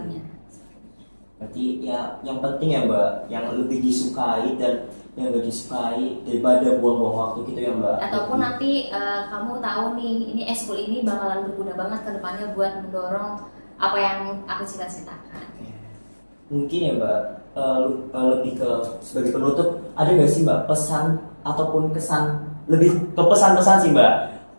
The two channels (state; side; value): inverted; both; correlation -1.00